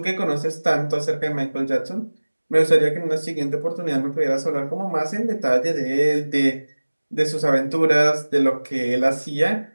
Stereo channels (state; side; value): inverted; both; correlation -1.00